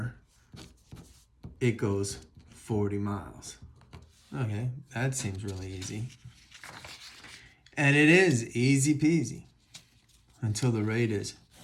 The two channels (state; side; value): identical; both; correlation 1.00